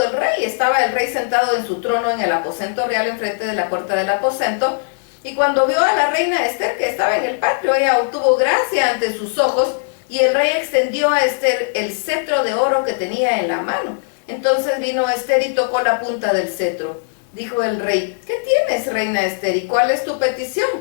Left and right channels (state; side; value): silent; right; digital silence